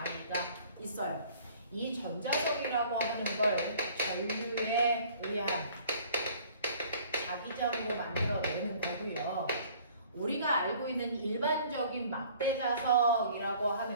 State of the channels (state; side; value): inverted; both; correlation -0.53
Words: 있어요. 이 전자석이라고 하는 걸 전류에 의한 자기장으로 만들어내는 거고요. 우리가 알고 있는 일반적인 막대자석이라고